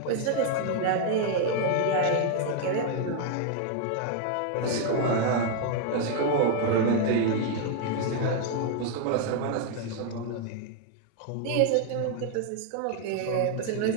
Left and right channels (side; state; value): both; different; correlation 0.00